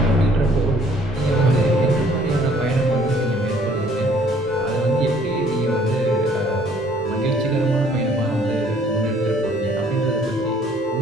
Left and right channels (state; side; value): normal; both; correlation 0.59